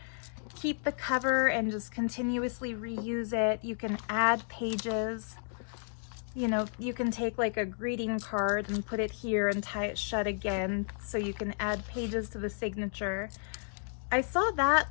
keep the cover and just continuously reuse it. You can add pages. You know, you can take like a greeting card and put it here and tie it shut again so you can add pages to the signature. I saw that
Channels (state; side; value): silent; right; digital silence